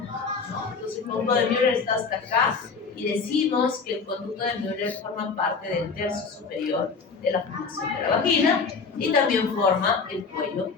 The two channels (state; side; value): quieter; right; 5.0 dB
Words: ¿no? Entonces el conducto de Müller está hasta acá y decimos que el conducto de Müller forma parte del tercio superior de la formación de la vagina y también forma el cuello del